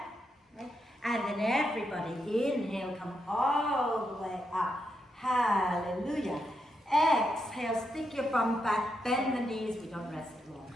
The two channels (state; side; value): normal; both; correlation 0.82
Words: Okay? And then everybody, inhale, come all the way up. Hallelujah. Exhale, stick your bum back, bend the knees, we don't rest long.